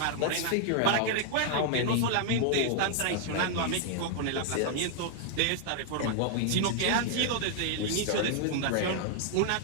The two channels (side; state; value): both; different; correlation 0.00